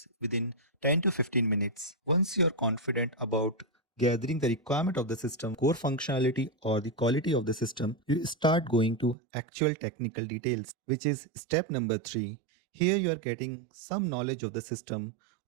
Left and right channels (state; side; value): drops out; left; at 9.2 s